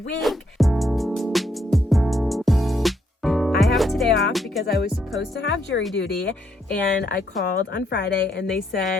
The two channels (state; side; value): normal; both; correlation 0.74